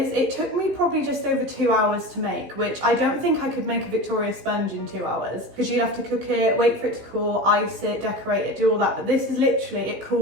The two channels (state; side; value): late; left; 16 ms